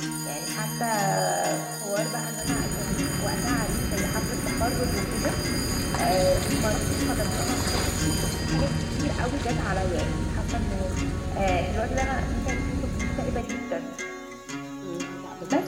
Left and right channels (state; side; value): identical; both; correlation 1.00